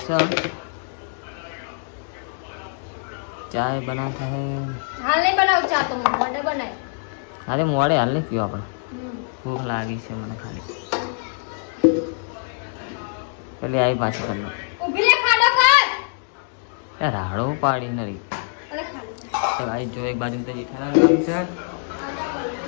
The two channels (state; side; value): silent; right; digital silence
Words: છે. ચાય બનાવતા હે. હાલ નહીં બનાવ ચા તો મોડે બનાય. અરે મોડે હાલ નહીં પીવા પણ ભૂખ લાગી છે મને ખાલી. પેલી આવી પાછી કરી લો. ઊભી રે ખાડો કર. એ રાડો પાડી નરી. અરે ખાલી તો ભાઈ જો એક બાજુ તો જેઠાલાલ કામ છે.